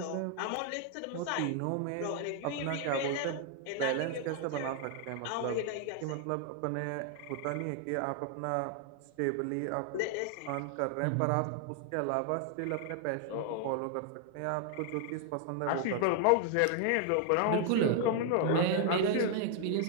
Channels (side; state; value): both; different; correlation 0.00